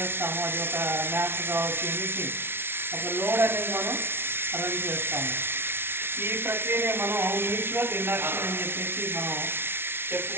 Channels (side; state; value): left; late; 0.11 ms